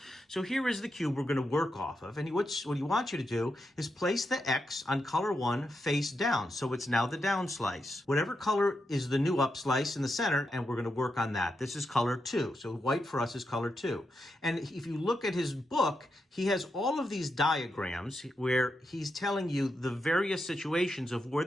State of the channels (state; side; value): normal; both; correlation 0.85